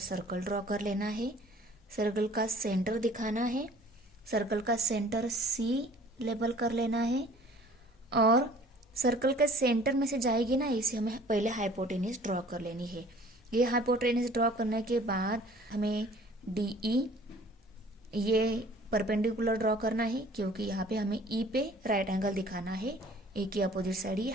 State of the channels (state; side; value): normal; both; correlation 0.51